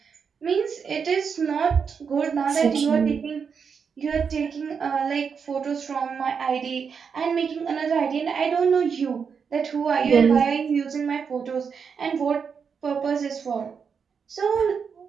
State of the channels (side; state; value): left; quieter; 6.3 dB